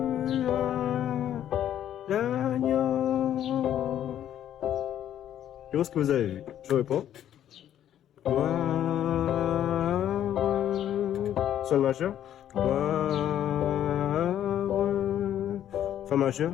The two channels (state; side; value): quieter; right; 10.9 dB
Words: à l'agneau. Je pense que vous avez vu. Je réponds. Gloire. Sol majeur. Gloire. Fa majeur.